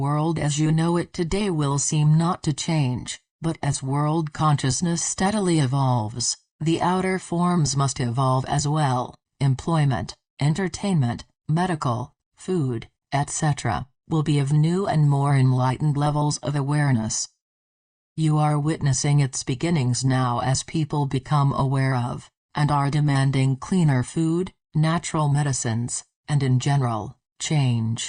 as you know it today will seem not to change, but as world consciousness steadily evolves, the outer forms must evolve as well. Employment, entertainment, medical, food, etc., will be of new and more enlightened levels of awareness. You are witnessing its beginnings now as people become aware of, and are demanding cleaner food, natural medicines, and in general,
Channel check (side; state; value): both; identical; correlation 1.00